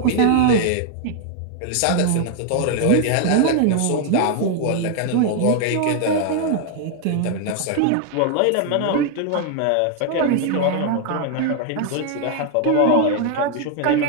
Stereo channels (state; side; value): different; both; correlation 0.00